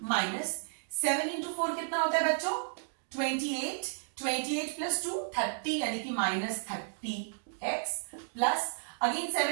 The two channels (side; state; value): left; silent; digital silence